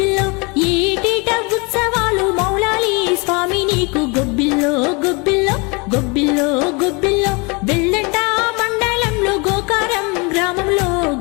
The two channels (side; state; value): right; quieter; 29.6 dB